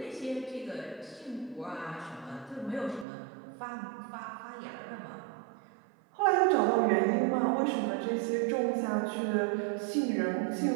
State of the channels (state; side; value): drops out; left; at 3.1 s